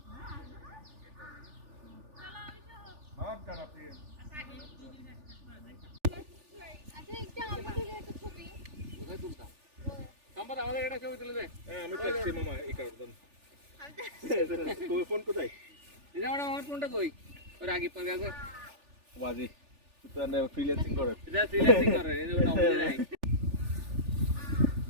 আমাদের এটা ছবি তুলে দে। আমি তো এসছি মামা এই কারণ ফোন কোথায় আমার ফোনটা কই ওর আগে পরে আছে বাজি তো না ফ্রিল্যান্সিং করে এটা ফ্রিল্যান্সিং করে এই যে নম্বর নাই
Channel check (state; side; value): late; left; 3.4 ms